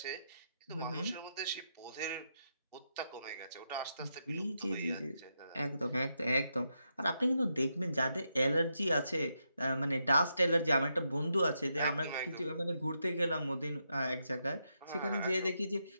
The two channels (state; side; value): inverted; both; correlation -0.83